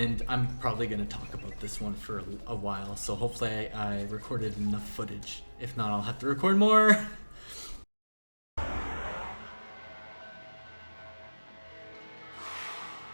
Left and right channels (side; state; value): both; inverted; correlation -1.00